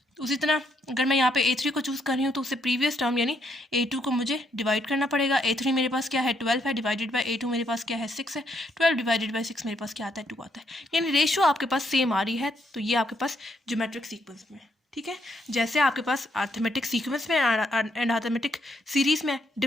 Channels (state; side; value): normal; both; correlation 0.75